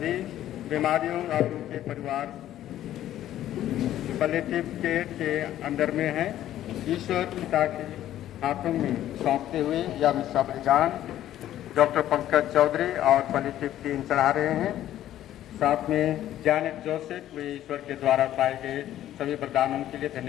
बीमारियों और उनके परिवार पैलिएटिव केयर के अंदर में है। ईश्वर पिता के हाथों में सौंपते हुए यह मिसा बलिदान डॉक्टर पंकज चौधरी और पैलिएटिव टीम चढ़ा रहे हैं। साथ में जैनेट जोसेफ वे ईश्वर के द्वारा पाए गए सभी वरदानों के लिए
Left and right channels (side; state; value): right; quieter; 12.6 dB